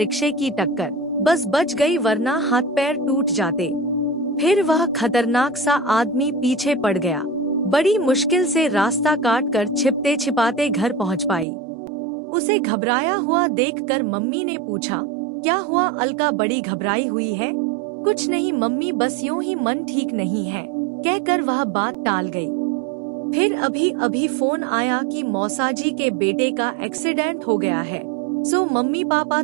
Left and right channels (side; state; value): left; drops out; at 11.5 s